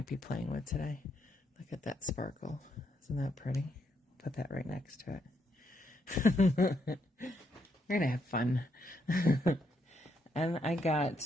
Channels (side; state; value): both; normal; correlation 0.77